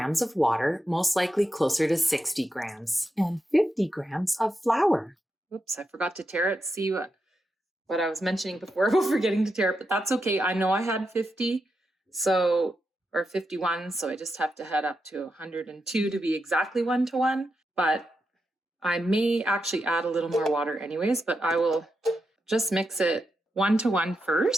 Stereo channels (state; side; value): normal; both; correlation 0.86